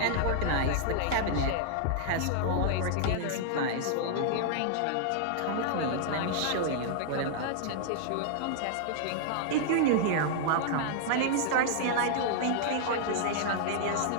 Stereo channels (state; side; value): different; both; correlation -0.01